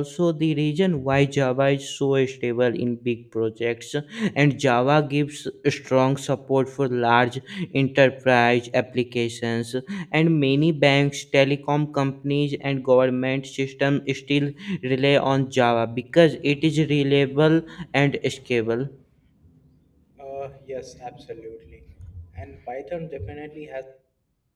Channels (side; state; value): both; identical; correlation 1.00